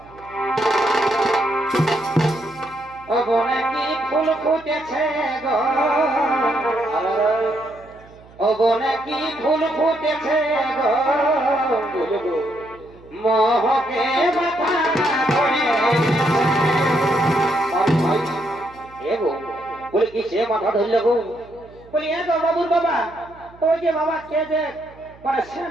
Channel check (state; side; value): noise; right; hum, 24 dB below the sound